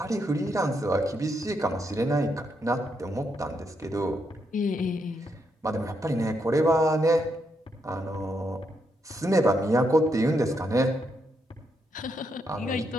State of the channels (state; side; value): normal; both; correlation 0.80